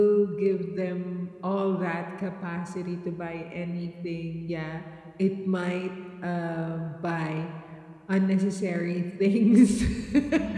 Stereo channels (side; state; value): both; identical; correlation 1.00